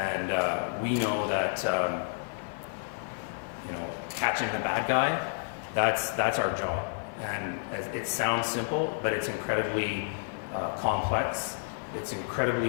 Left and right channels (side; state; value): right; silent; digital silence